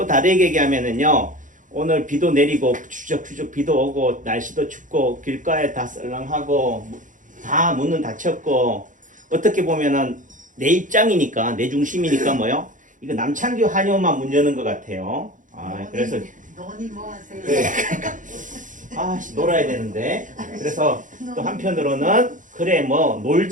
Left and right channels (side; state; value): left; late; 0.37 ms